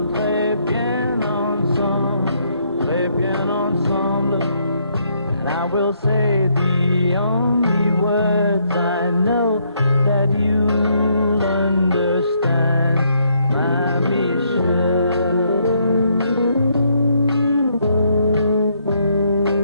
très bien ensemble, très bien ensemble. And I will say the only words I know that you'll understand, my Michelle.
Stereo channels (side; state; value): both; inverted; correlation -0.72